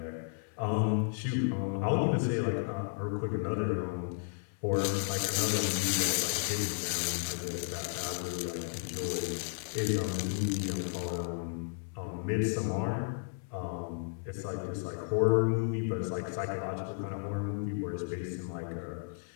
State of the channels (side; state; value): right; silent; 56 dB below the other